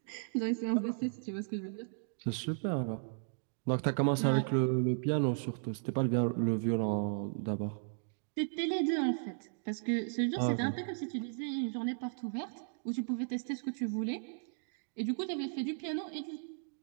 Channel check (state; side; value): silent; left; digital silence